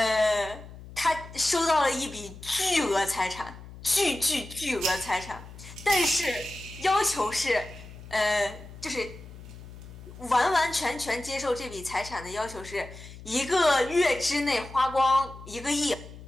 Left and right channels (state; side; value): noise; left; hum, 16 dB below the sound